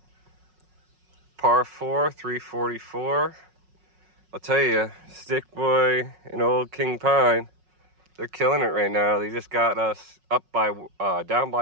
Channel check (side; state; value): left; late; 5.4 ms